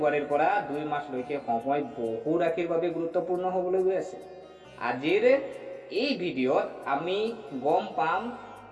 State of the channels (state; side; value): identical; both; correlation 1.00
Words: পৰা 2 মাৰ্চলৈকে সময় বহু ৰাশিৰ বাবে গুৰুত্বপূৰ্ণ হ'বলৈ গৈ আছে। আজিৰ এই ভিডিঅ'ত আমি গম পাম